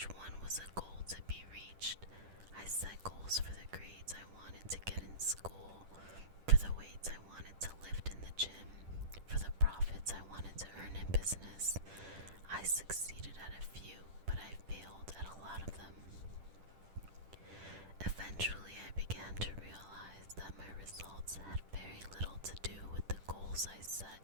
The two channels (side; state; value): left; late; 10 ms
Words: one was a goal to be reached. I set goals for the grades I wanted to get in school, for the weights I wanted to lift in the gym, for the profits I wanted to earn in business. I succeeded at a few, but I failed at a lot of them. Eventually, I began to realize that my results had very little to do with the goals I set